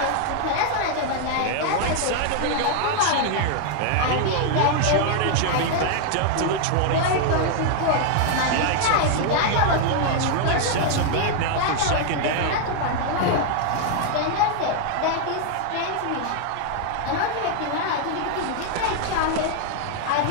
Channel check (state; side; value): different; both; correlation 0.00